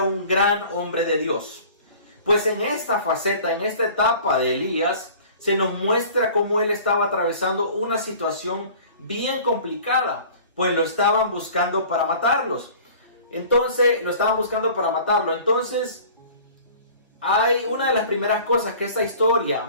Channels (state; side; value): inverted; both; correlation -0.46